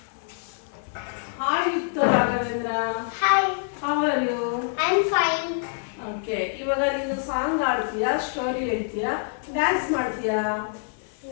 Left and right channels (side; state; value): right; silent; 60 dB below the other